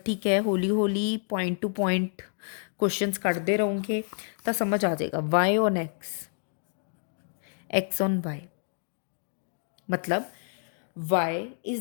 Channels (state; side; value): silent; right; digital silence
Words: ਠੀਕ ਹੈ, ਹੌਲੀ ਹੌਲੀ ਪੁਆਇੰਟ ਟੂ ਪੁਆਇੰਟ ਕੁਐਸਚਨਸ ਕੱਢਦੇ ਰਹੋਗੇ ਤਾਂ ਸਮਝ ਆ ਜਾਏਗਾ। Y on X, X on Y, मतलब y